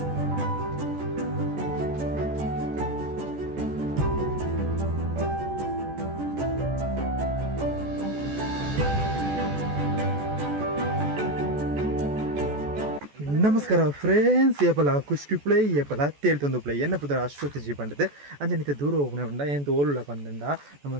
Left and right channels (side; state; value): left; late; 14 ms